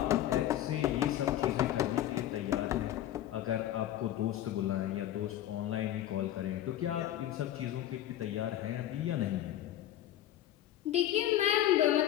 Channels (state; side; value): quieter; right; 12.5 dB